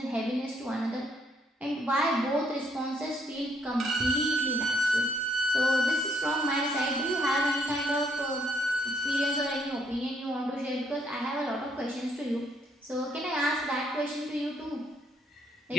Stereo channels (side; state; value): both; normal; correlation 0.70